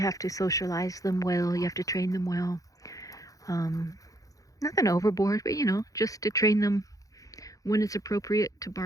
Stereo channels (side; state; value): right; late; 0.17 ms